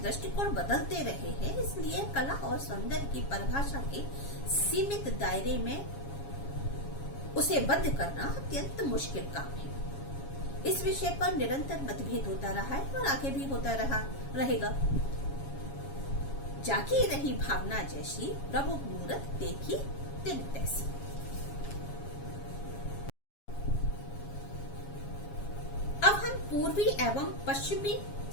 बदलते रहे हैं, इसलिए कला और सौंदर्य की परिभाषा के सीमित दायरे में उसे बंद करना अत्यंत मुश्किल काम है। इस विषय पर निरंतर मतभेद होता रहा है और आगे भी होता रहेगा। जागी रही भावना जैसी प्रभु मूरत देखी तिन तैसी। अब हम पूर्वी एवं पश्चिमी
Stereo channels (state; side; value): late; right; 7.3 ms